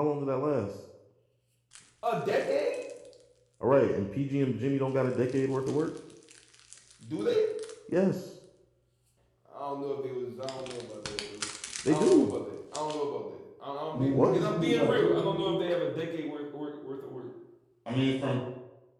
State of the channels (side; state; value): both; identical; correlation 1.00